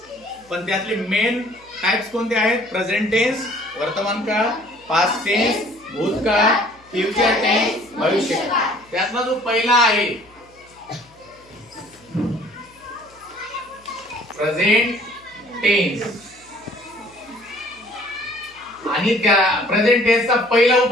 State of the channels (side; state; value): left; noise; hum, 30 dB below the sound